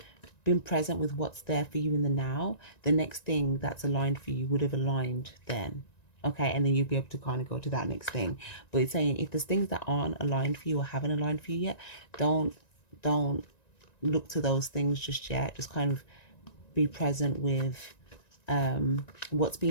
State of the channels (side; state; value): right; late; 1.9 ms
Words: been present with what's there for you in the now, the next thing that's aligned for you would have aligned then. Okay, and then you'll be able to kind of go to that next thing. But it's saying if there's things that aren't aligned for you or haven't aligned for you yet, don't look to those things just yet. Just kind of be present with what's